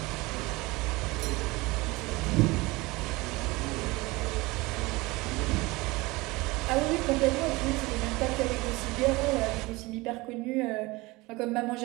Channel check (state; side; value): quieter; left; 22.3 dB